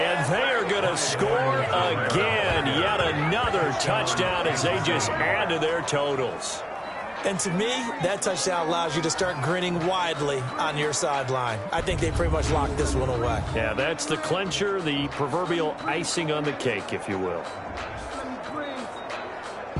they are going to score again. Yet another touchdown as they just add to their totals. And to me, that touchdown allows you to start grinning widely on your sideline. I think they pretty much locked this one away. Yeah, that's the clincher, the proverbial icing on the cake, if you will.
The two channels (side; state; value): both; identical; correlation 1.00